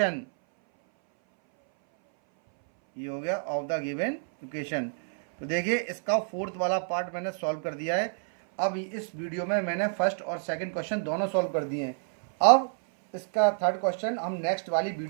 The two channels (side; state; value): left; silent; 58 dB below the other